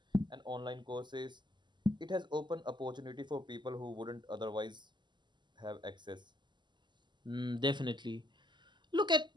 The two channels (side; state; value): left; late; 0.22 ms